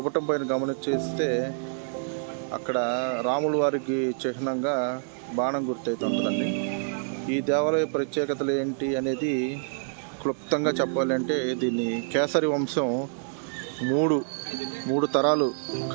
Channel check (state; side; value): silent; left; 60 dB below the other